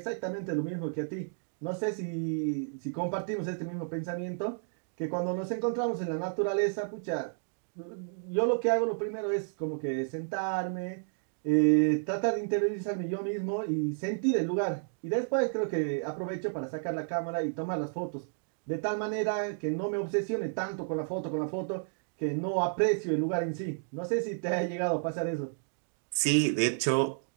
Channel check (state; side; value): silent; left; digital silence